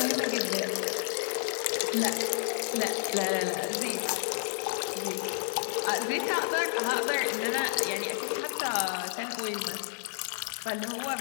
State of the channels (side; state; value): right; silent; digital silence